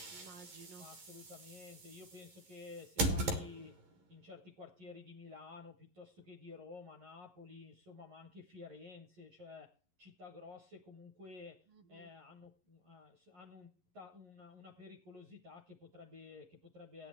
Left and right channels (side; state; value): left; late; 11 ms